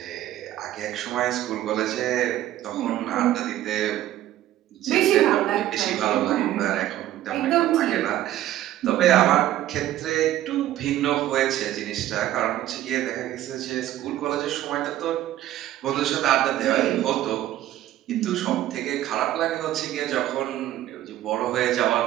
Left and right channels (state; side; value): quieter; left; 13.4 dB